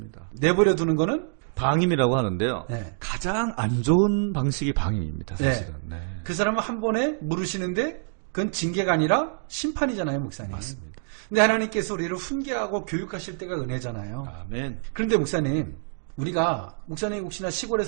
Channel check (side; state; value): left; silent; digital silence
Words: 내버려 두는 거는? 방임이라고 하는데요. 네. 가장 안 좋은 방식이 방임입니다, 사실은. 네. 네. 그 사람은 한 번에 물으시는데, 그건 징계가 아니라 심판이잖아요, 목사님. 맞습니다. 근데 하나님께서 우리를 훈계하고 교육하실 때가 은혜잖아요. 아멘. 그런데 목사님, 목사님 혹시나 시골에